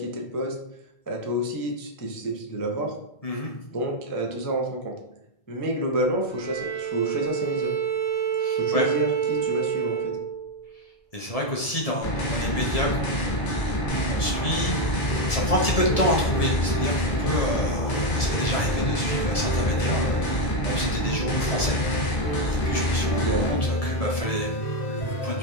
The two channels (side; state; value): right; late; 1.7 ms